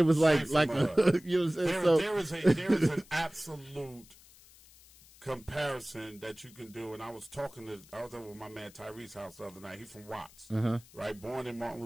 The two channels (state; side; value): noise; left; hiss, 24 dB below the sound